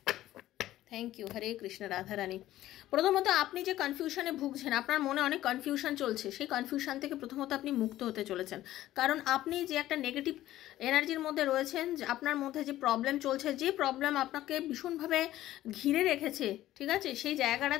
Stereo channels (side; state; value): right; quieter; 14.4 dB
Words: thank you. Hare Krishna Radharani. প্রথমত আপনি যে কনফিউশনে ভুগছেন, আপনার মনে অনেক কনফিউশন চলছে, সেই কনফিউশন থেকে প্রথমত আপনি মুক্ত হতে চলেছেন। কারণ আপনি যে একটা নেগেটিভ এনার্জির মধ্যে রয়েছেন, যে আপনার মধ্যে যে প্রবলেম চলছে, যে প্রবলেম আপনাকে ভীষণভাবে ঘিরে রেখেছে, ঠিক আছে, সেই